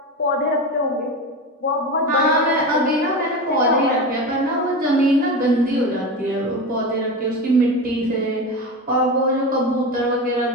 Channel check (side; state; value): both; normal; correlation 0.24